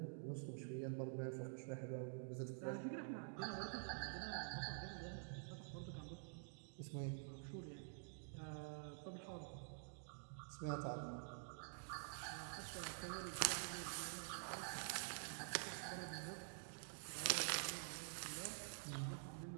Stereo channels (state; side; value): silent; left; digital silence